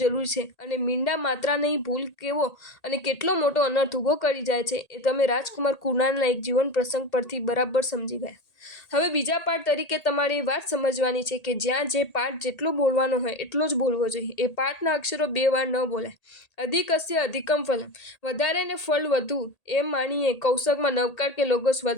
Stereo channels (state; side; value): late; right; 1.8 ms